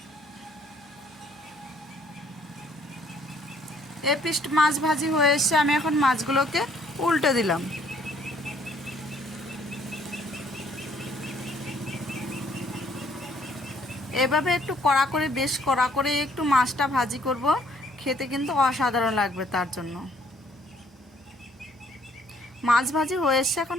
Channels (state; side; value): normal; both; correlation 0.63